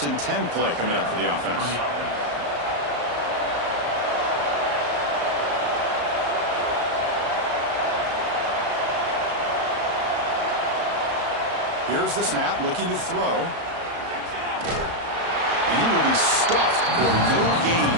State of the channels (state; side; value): late; left; 34 ms